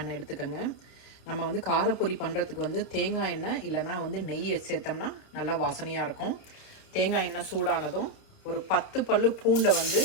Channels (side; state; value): right; late; 30 ms